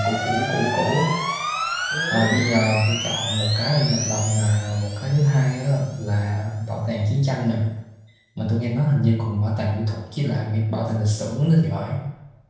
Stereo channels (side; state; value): both; identical; correlation 1.00